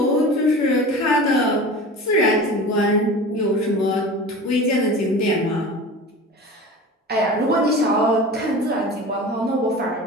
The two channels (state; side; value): normal; both; correlation 0.35